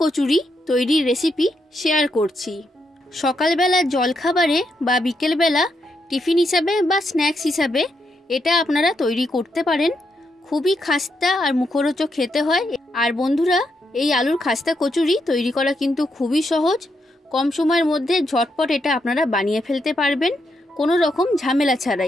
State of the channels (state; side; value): normal; both; correlation 0.80